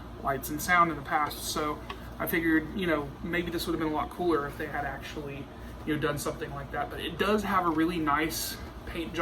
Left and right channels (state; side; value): identical; both; correlation 1.00